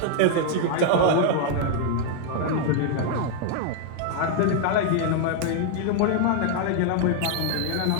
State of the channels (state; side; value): different; both; correlation 0.00